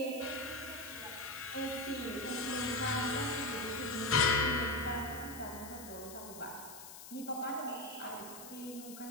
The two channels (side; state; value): left; noise; hiss, 13 dB below the sound